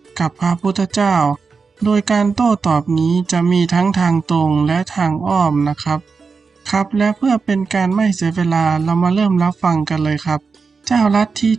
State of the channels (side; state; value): left; quieter; 4.9 dB